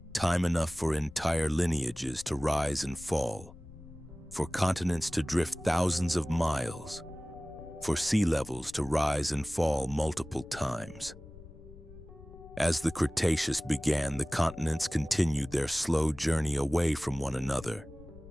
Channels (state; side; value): noise; left; rumble, 18 dB below the sound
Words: Time enough for entire lineages to rise and fall, for continents to drift thousands of miles, for sea levels to rise and fall multiple times. As the Cretaceous began, the continents continued their slow journey away from one another.